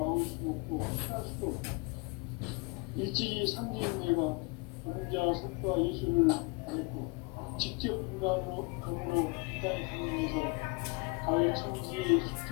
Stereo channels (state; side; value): quieter; right; 29.0 dB